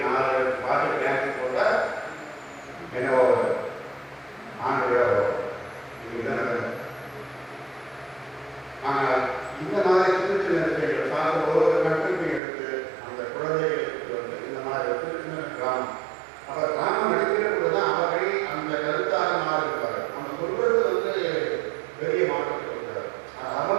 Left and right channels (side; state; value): left; drops out; at 12.4 s